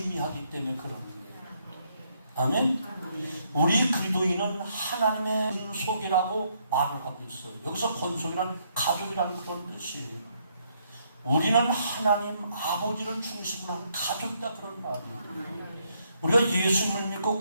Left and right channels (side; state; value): both; inverted; correlation -0.73